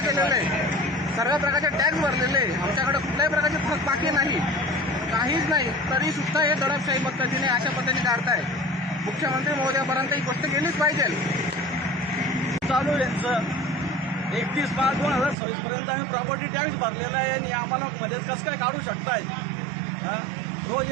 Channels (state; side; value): drops out; left; at 15.4 s